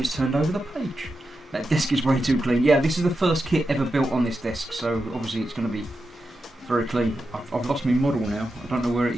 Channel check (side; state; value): both; normal; correlation 0.89